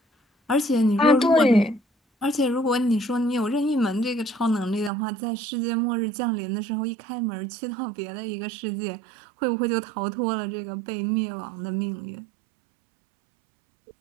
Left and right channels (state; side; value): drops out; left; at 4.9 s